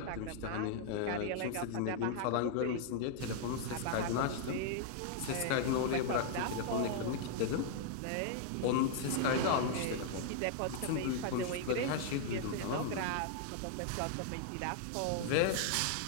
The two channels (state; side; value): different; both; correlation -0.01